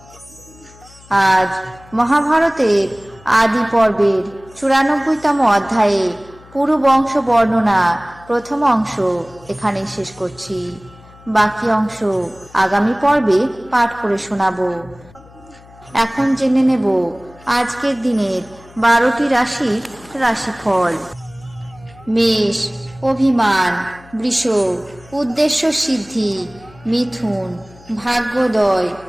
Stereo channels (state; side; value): noise; left; hum, 24 dB below the sound